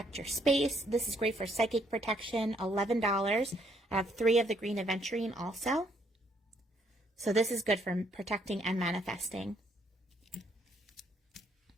your space. This is great for psychic protection, $11. I have 3 of the green aventurine also. So this is good for protecting and manifesting.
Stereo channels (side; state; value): both; normal; correlation 0.70